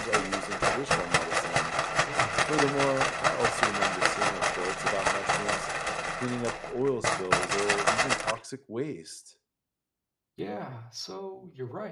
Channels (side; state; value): both; identical; correlation 1.00